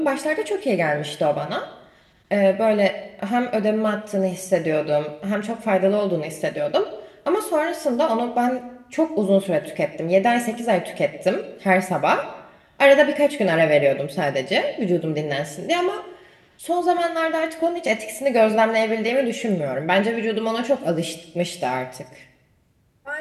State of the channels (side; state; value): both; identical; correlation 1.00